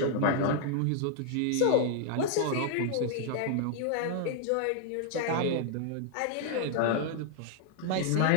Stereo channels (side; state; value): both; different; correlation 0.00